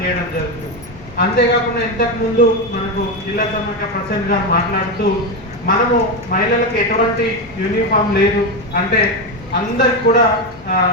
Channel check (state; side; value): noise; left; hum, 20 dB below the sound